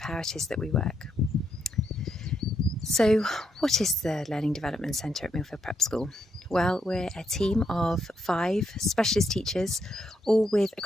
it is that we work. So, what is the Learning Development Centre at Millfield Prep School? Well, we're a team of 5 specialist teachers, all with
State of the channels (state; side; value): normal; both; correlation 0.79